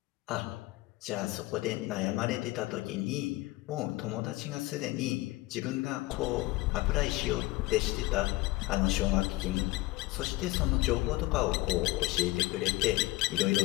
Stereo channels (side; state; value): right; quieter; 20.1 dB